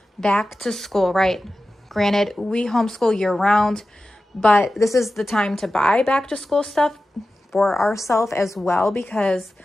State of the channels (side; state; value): both; normal; correlation 0.94